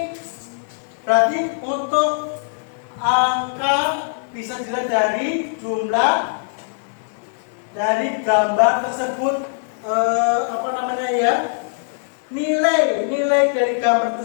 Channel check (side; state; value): right; silent; digital silence